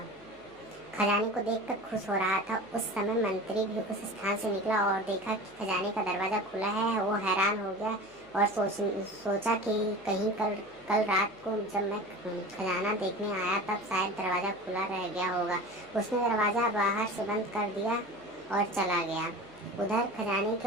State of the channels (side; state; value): left; noise; hum, 29 dB below the sound